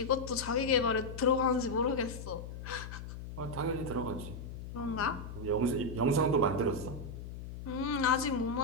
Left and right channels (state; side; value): noise; left; hum, 10 dB below the sound